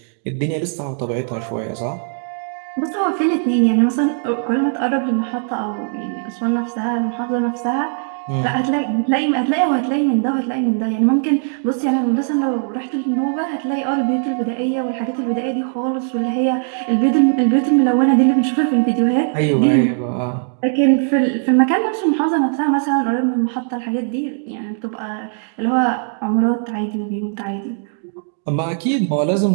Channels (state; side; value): silent; left; digital silence